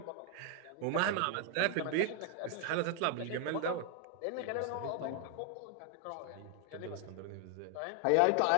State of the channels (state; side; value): different; both; correlation 0.00